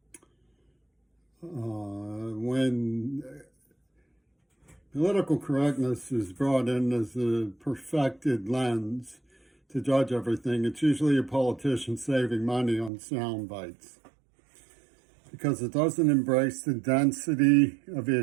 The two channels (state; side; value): drops out; left; at 12.9 s